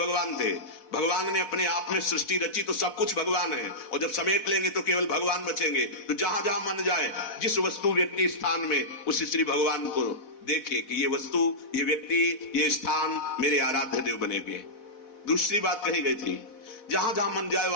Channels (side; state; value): right; late; 4.1 ms